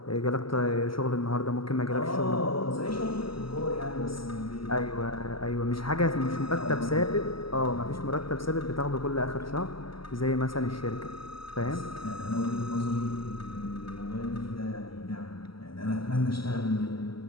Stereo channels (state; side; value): late; right; 0.75 ms